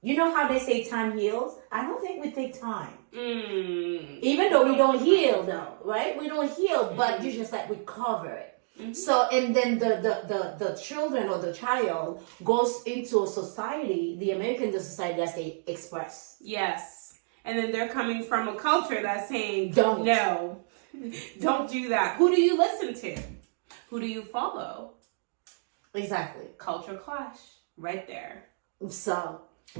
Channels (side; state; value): left; silent; digital silence